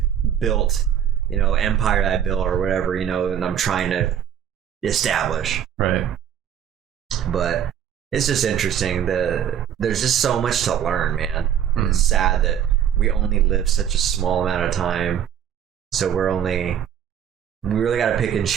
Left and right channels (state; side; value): quieter; left; 9.4 dB